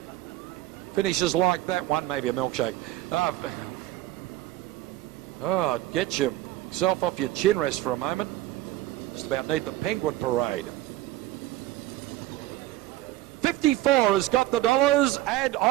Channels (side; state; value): left; quieter; 15.7 dB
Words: Finishes like that one, maybe a milkshake. Get yourself off your chin rest for a moment. Just about need the penguin parade. 54 has got the dollars, and